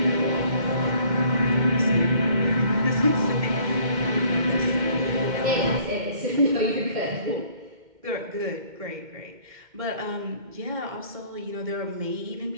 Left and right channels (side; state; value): left; late; 2.1 ms